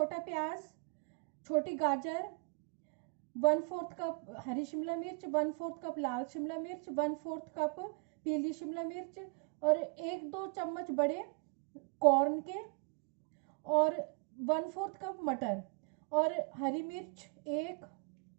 प्याज, छोटी गाजर, 1/4 कप हरी शिमला मिर्च, 1/4 कप लाल शिमला मिर्च, 1/4 कप पीली शिमला मिर्च और 1-2 चम्मच बड़े कॉर्न के और 1/4 कप मटर और हरी मिर्च एक,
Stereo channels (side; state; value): left; quieter; 36.7 dB